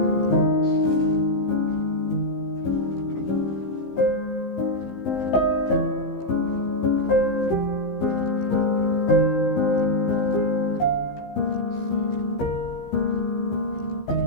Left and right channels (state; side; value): late; right; 15 ms